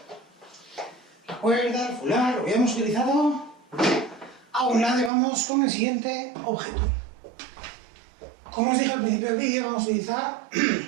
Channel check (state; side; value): drops out; left; at 5.1 s